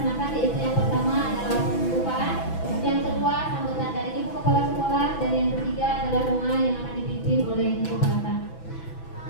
yaitu yang pertama adalah pembukaan, yang kedua sambutan dari Ibu Kepala Sekolah, dan yang ketiga adalah doa yang akan dipimpin oleh Ibu Kepala.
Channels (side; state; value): right; late; 6.0 ms